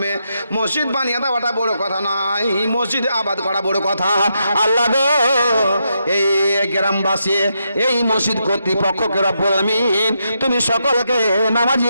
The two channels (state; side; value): inverted; both; correlation -0.82